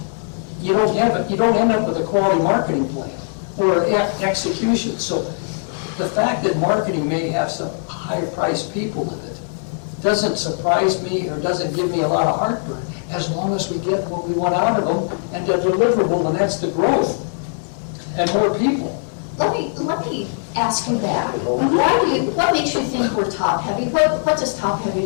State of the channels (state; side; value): silent; right; digital silence